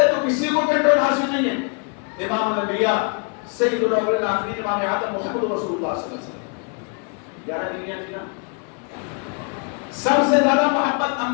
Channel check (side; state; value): right; quieter; 38.0 dB